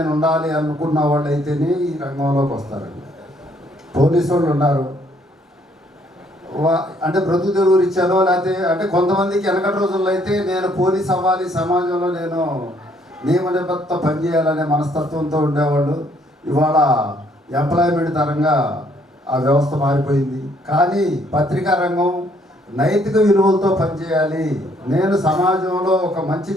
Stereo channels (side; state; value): both; normal; correlation 0.66